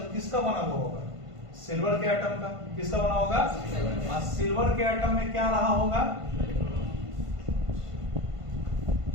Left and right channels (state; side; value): late; left; 1.5 ms